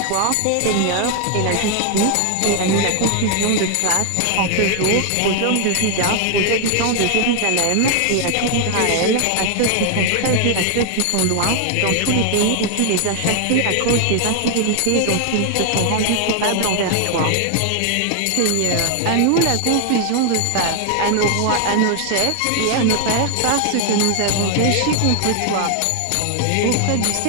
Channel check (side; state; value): both; different; correlation 0.00